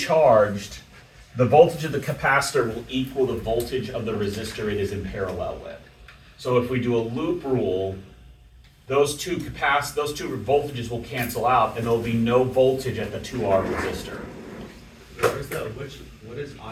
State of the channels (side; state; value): both; identical; correlation 1.00